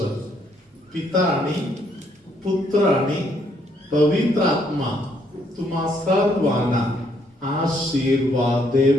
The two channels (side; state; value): both; normal; correlation 0.70